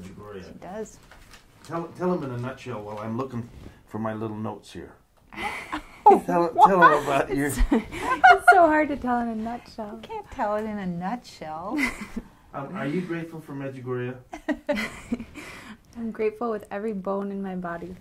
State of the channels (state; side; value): identical; both; correlation 1.00